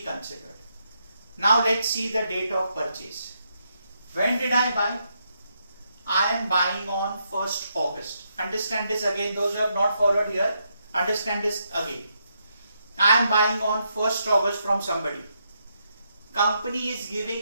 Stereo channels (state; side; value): inverted; both; correlation -0.79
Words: Now let's see the date of purchase. When did I buy? I am buying on 1st August. Understand this again, those who have not followed here, understand this again. I am buying on 1st August from somebody. Company is